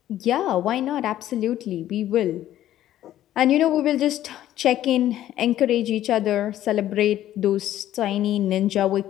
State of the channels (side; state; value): right; quieter; 12.8 dB